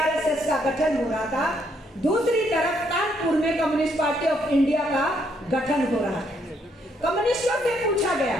का गठन हो रहा था, दूसरी तरफ कानपुर में कम्युनिस्ट पार्टी ऑफ इंडिया का गठन हो रहा था। कम्युनिस्टों से पूछा गया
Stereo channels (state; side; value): normal; both; correlation 0.72